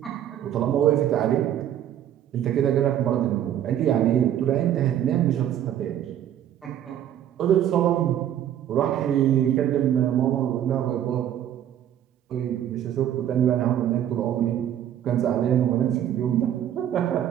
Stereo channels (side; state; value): left; quieter; 10.8 dB